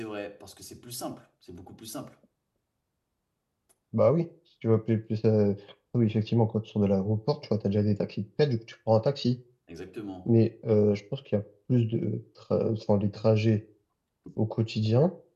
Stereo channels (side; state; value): both; identical; correlation 1.00